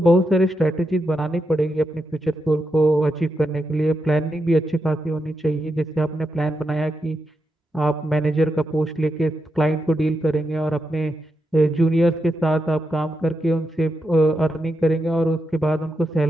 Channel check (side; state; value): both; normal; correlation 0.85